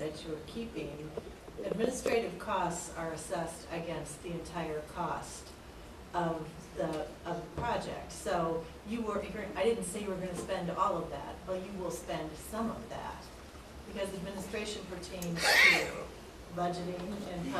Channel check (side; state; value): both; identical; correlation 1.00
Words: you're keeping, administrative costs are assessed against the entire cost of the project. So I didn't say you were going to spend all of that, but you will spend some of that, because administration pertains to budgeting and